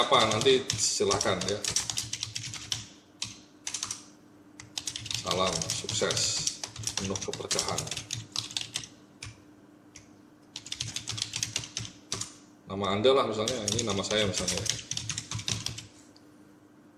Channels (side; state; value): both; identical; correlation 1.00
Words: apa nanti silakan ya. Salam sukses, penuh keberkahan. Nama Anda lah misalnya, ini nama saya misalnya.